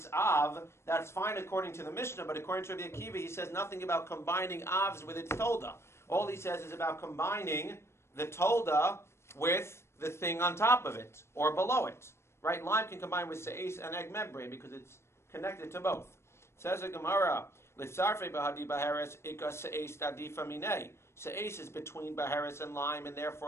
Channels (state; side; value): late; right; 0.13 ms